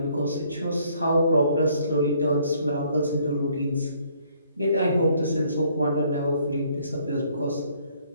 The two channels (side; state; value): both; inverted; correlation -0.64